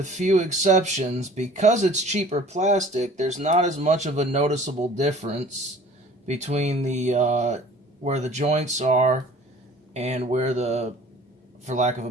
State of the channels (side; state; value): both; normal; correlation 0.48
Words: few exceptions, because it's cheaper plastic, there's not as much of a noticeable difference between the where the joints are and where the, for lack of a